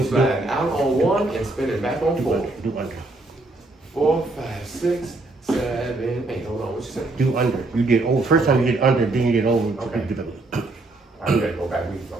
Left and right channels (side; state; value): left; quieter; 3.0 dB